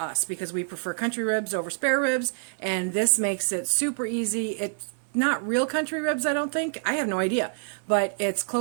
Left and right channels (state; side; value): silent; left; digital silence